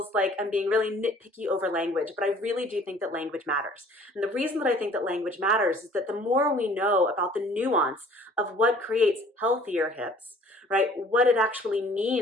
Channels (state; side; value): normal; both; correlation 0.53